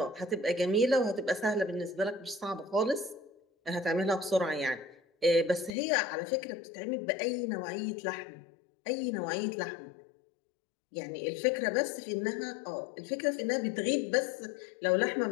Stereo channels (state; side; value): drops out; right; at 5.8 s